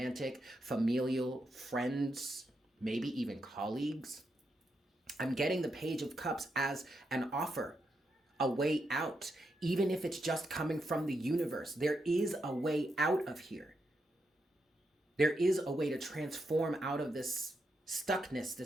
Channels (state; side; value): normal; both; correlation 0.83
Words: familial, friends, maybe even colleagues. I'm getting the Page of Cups as an offer, a way out, even if it's just coming from the universe. There is a way out of here. There is a way to transform out of this stuckness,